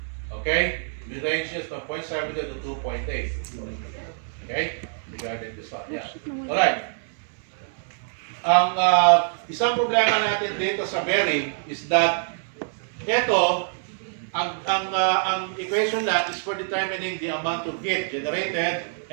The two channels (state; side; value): silent; left; 62 dB below the other